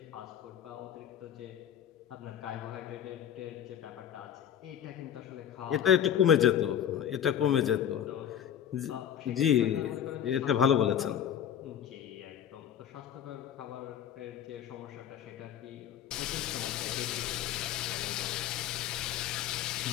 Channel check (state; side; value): quieter; right; 9.7 dB